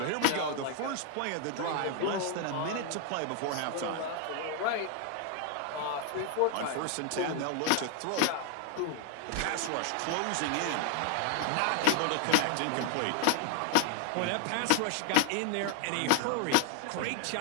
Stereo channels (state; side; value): different; both; correlation 0.00